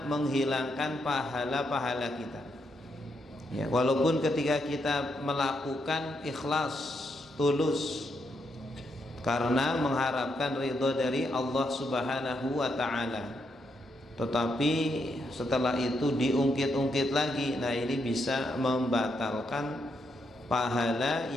menghilangkan pahala-pahala kita, ya, walaupun ketika kita melakukan ikhlas, tulus karena mengharapkan ridho dari Allah Subhanahu wa ta'ala, tetapi setelah itu diungkit-ungkit lagi, nah ini bisa membatalkan pahala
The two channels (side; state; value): both; normal; correlation 0.79